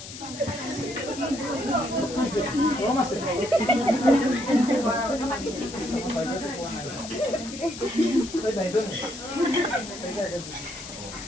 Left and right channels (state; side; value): noise; left; hiss, 12 dB below the sound